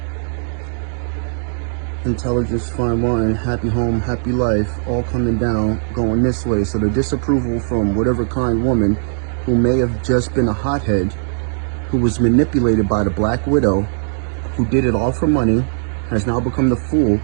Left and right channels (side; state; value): left; silent; digital silence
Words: Intelligence, fine wine, happy home, happy life, all coming down, going this way. So the disapproval from whatever kind woman who may have just been a hothead, who was manipulated by the Black Widow, who did it all for money, has now become the fool,